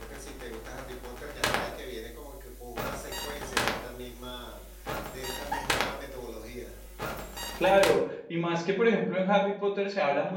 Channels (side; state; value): both; identical; correlation 1.00